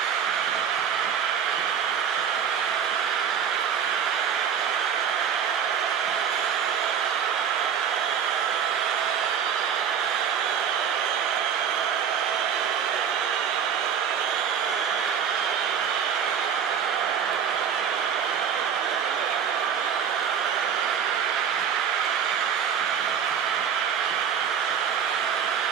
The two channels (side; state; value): left; quieter; 7.9 dB